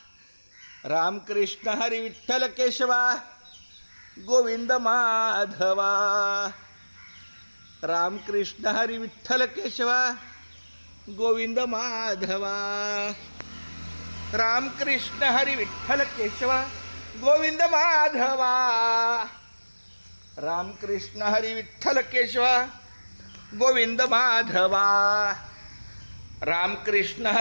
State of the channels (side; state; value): both; inverted; correlation -1.00